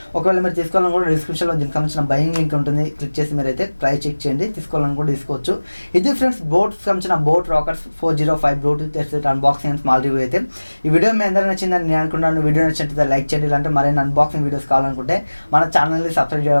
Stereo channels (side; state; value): both; inverted; correlation -1.00